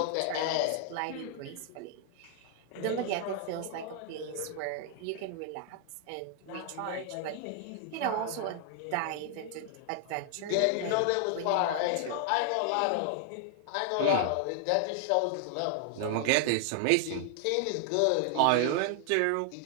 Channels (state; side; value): different; both; correlation 0.00